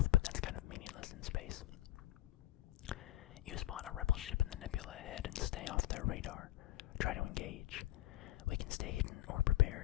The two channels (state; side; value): quieter; right; 15.0 dB